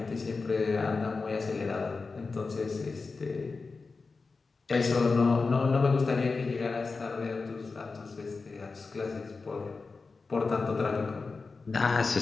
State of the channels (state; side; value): quieter; right; 4.2 dB